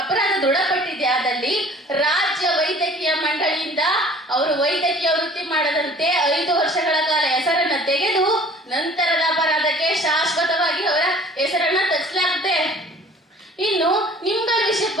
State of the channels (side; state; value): both; normal; correlation 0.49